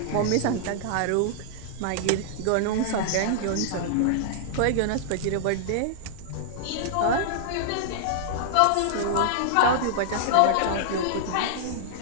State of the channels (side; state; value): both; different; correlation -0.01